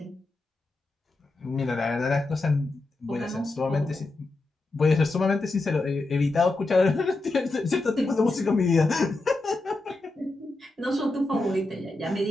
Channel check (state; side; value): quieter; right; 3.0 dB